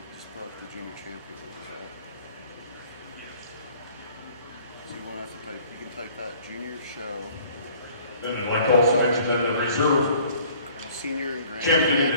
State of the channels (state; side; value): inverted; both; correlation -0.54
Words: just brought the junior champion over that. So you won't have to type. You can type that junior show. Then I'd like to also mention that the reserve Senior and grand champion in